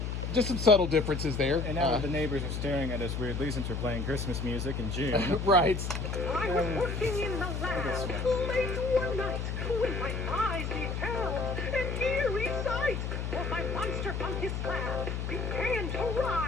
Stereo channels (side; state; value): left; noise; hum, 3 dB below the sound